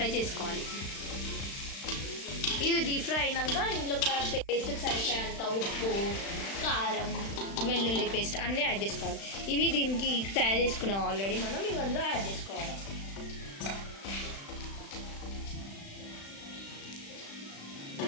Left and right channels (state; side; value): late; right; 36 ms